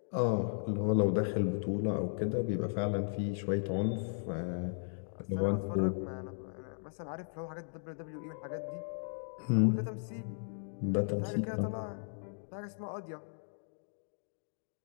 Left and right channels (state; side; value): silent; right; digital silence